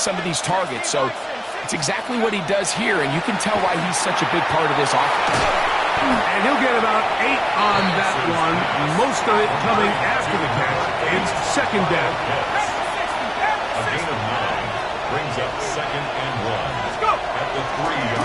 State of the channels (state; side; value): identical; both; correlation 1.00